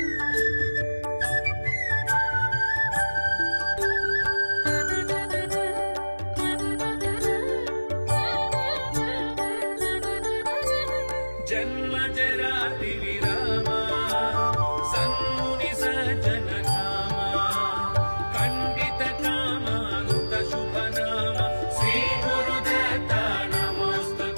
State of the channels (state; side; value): inverted; both; correlation -1.00